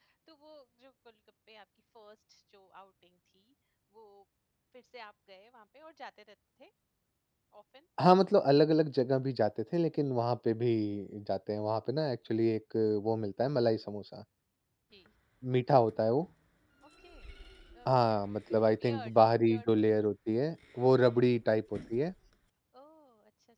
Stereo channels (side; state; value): both; identical; correlation 1.00